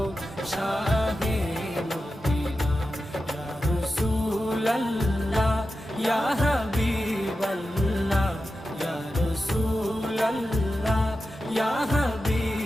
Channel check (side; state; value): both; normal; correlation 0.92